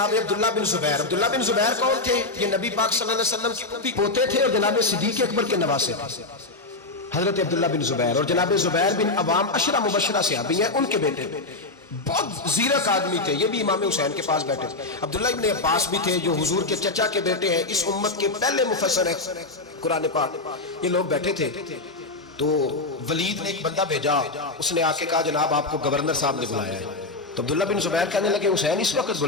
عبداللہ بن زبیر، عبداللہ بن زبیر کون تھے؟ یہ نبی پاک صلی اللہ علیہ وسلم کے پوتے تھے اور جناب صدیق اکبر کے نواسے تھے. حضرت عبداللہ بن زبیر اور جناب زبیر بن عوام 10 مبشرہ صحابی ہیں، ان کے بیٹے بہت زیرک آدمی تھے. یہ بھی امام حسین کے پاس بیٹھے تھے. عبداللہ ابن عباس بھی تھے جو حضور کے چچا کے بیٹے ہیں، اس امت کے پہلے مفسر ہیں قرآن پاک. یہ لوگ بیٹھے تھے. تو ولید نے ایک بندہ بھیجا، اس نے آ کے کہا جناب آپ کو گورنر صاحب نے بلایا ہے. تو عبداللہ بن زبیر کہنے لگے حسین اس وقت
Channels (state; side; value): quieter; right; 3.2 dB